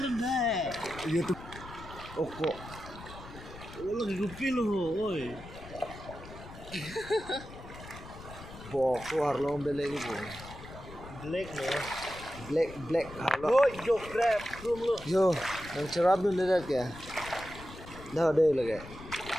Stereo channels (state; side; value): noise; left; rumble, 15 dB below the sound